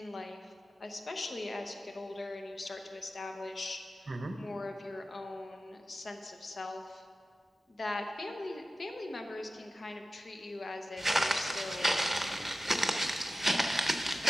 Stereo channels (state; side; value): normal; both; correlation 0.94